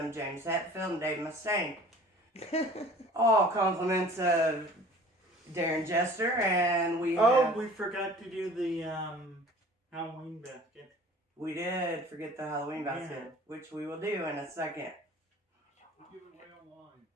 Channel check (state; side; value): normal; both; correlation 0.47